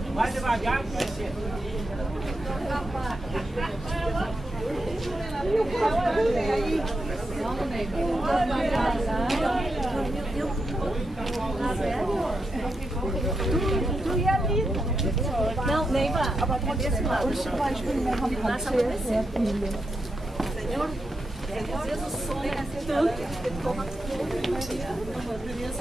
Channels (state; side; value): normal; both; correlation 0.85